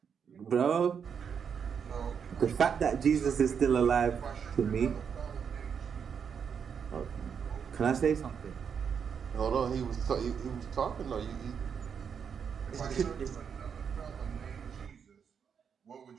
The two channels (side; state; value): left; quieter; 7.0 dB